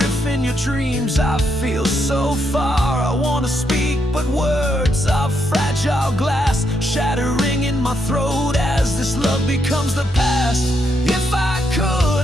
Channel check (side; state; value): both; normal; correlation 0.79